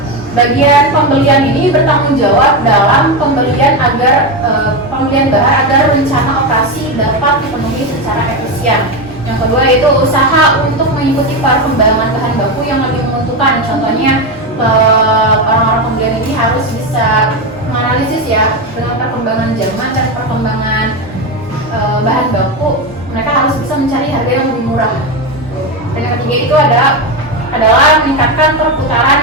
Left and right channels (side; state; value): both; normal; correlation 0.13